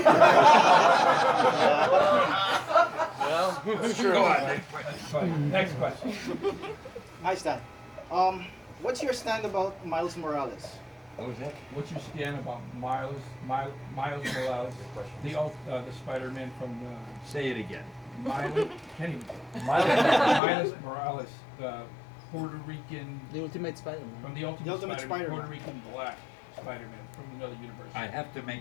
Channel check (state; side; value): drops out; right; at 20.4 s